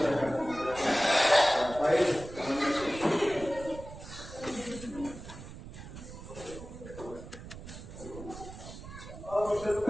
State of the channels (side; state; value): right; noise; rumble, 13 dB below the sound